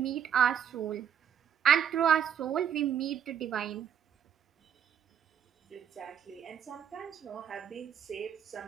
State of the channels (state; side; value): quieter; left; 8.6 dB